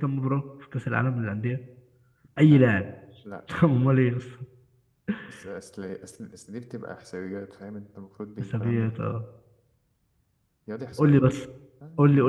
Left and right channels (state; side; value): identical; both; correlation 1.00